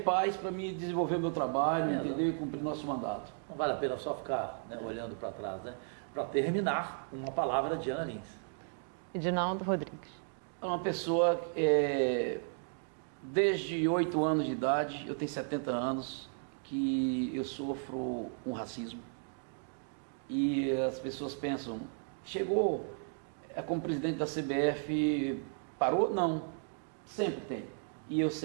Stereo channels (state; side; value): silent; left; 55 dB below the other